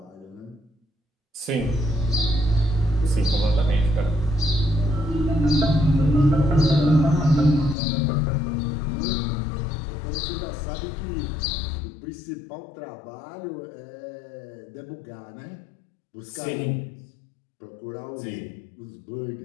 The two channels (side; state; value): right; drops out; at 7.8 s